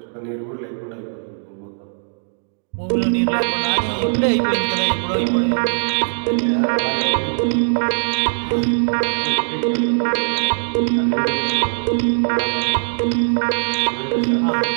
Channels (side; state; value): left; silent; digital silence